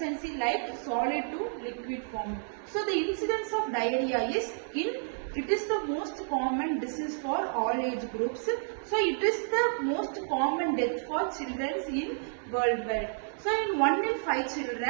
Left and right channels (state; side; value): silent; left; 57 dB below the other